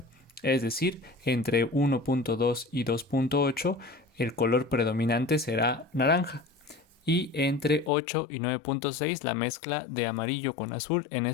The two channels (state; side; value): drops out; right; at 7.9 s